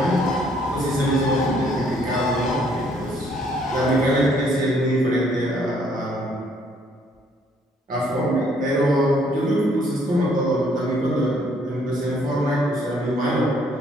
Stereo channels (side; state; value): both; normal; correlation 0.65